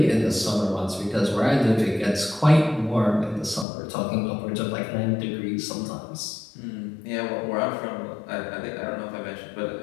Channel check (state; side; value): drops out; right; at 3.7 s